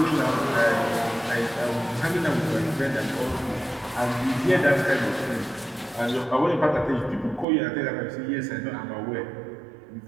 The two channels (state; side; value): drops out; left; at 7.5 s